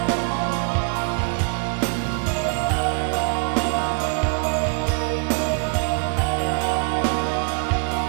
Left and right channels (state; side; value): quieter; left; 35.3 dB